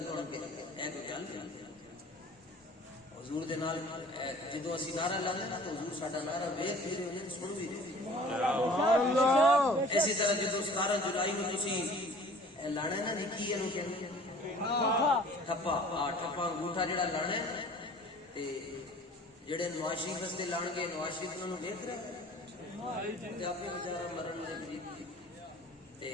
کون کہے گا اے کوئی گل نہیں حضور دے نال جدوں اسی نعرہ لانے نا تو حضور ساڈا نعرہ ویکھ بھی رہے ہیں سن بھی رہے سبحان اللہ اسی طرح جدوں 17 جولائی نوں تسی لانا نا نکی اینو کہندے ٹھپا ٹھپا انگوٹھا جڑا لانا ہے تے جڑے نواز شریف واسطے لان گے نواز شریف انہاں نوں ویکھ رہے تے اپنے بیچارہ مرن دے قریب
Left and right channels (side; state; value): both; normal; correlation 0.48